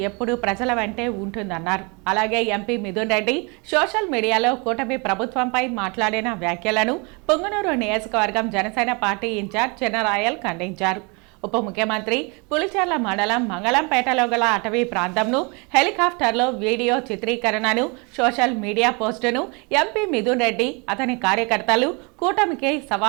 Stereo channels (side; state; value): left; quieter; 30.7 dB